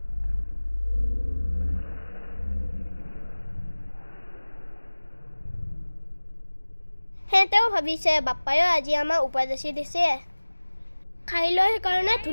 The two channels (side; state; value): both; inverted; correlation -1.00